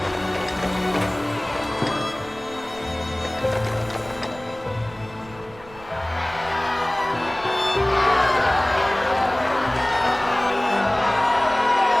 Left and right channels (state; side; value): noise; right; rumble, 21 dB below the sound